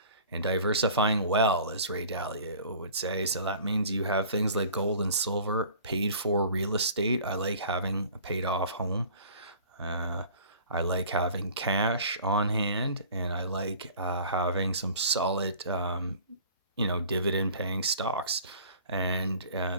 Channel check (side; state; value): both; inverted; correlation -0.46